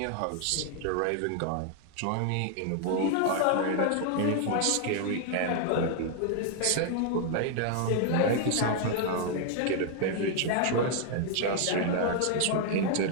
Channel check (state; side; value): different; both; correlation 0.00